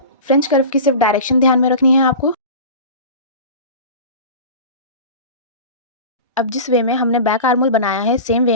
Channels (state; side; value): inverted; both; correlation -0.33